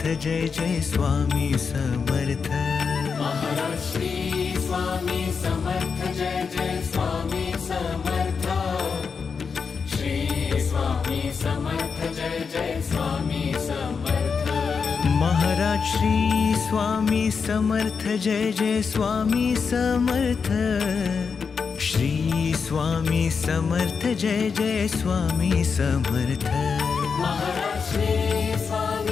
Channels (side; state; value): right; quieter; 5.6 dB